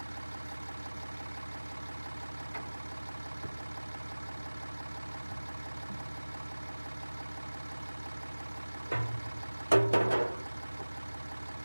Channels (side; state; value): both; inverted; correlation -1.00